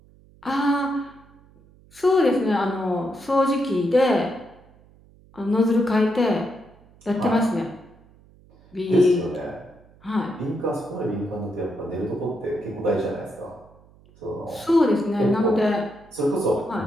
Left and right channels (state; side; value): noise; right; hum, 27 dB below the sound